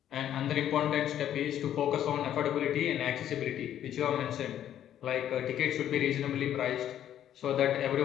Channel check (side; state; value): right; quieter; 10.8 dB